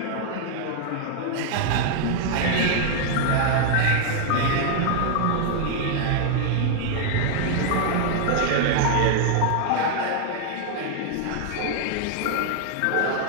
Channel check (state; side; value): different; both; correlation 0.00